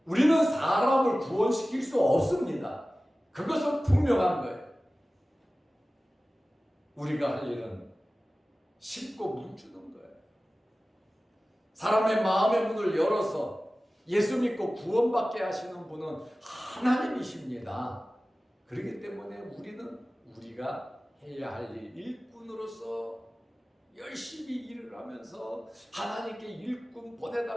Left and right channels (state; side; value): normal; both; correlation 0.96